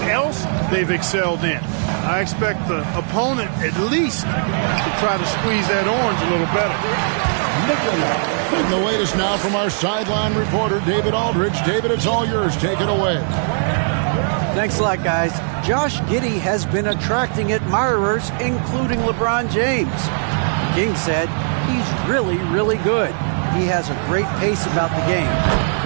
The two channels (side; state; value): left; silent; digital silence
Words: else they've excelled in. I expect the opponent at least to try to squeeze that orange a little better. And the latest now from our sideline reporter, David Aldridge. David, it's all yours. Take it away. Thanks a lot, guys. Josh Giddey has been attracting admirers, including LeBron James. The King said he's really, really good. He has a great pace about the game,